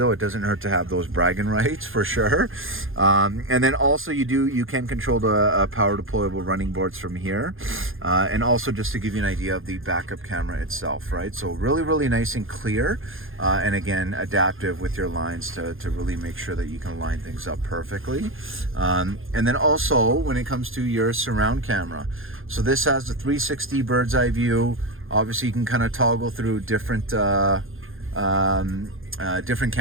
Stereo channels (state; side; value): late; left; 0.60 ms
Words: it doesn't hurt to have those bragging rights for sure. And then also you can control the power deployable running boards from here, and also just to give you an idea of the backup camera itself, right? So really nice and clear, and again, adaptive with your lines to really make sure that you can line things up perfectly. And then also when it comes to your surround camera, so this has the 360 bird's eye view. Obviously, you can kind of toggle through different cameras,